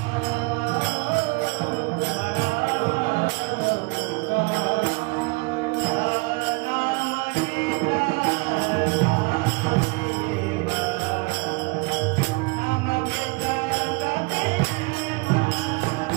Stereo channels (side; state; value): left; quieter; 27.8 dB